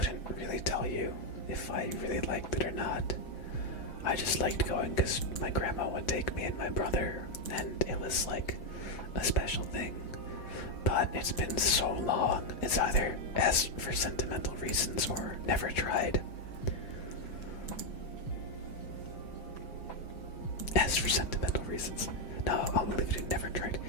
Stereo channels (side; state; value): right; late; 6.0 ms